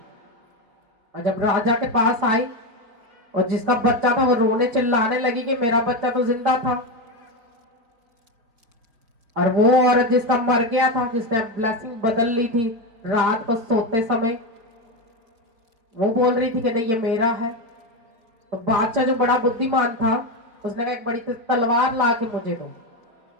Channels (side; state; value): left; late; 4.4 ms